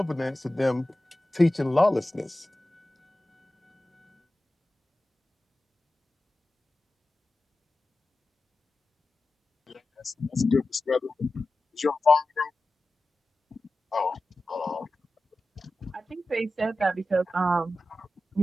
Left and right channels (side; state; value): both; normal; correlation 0.94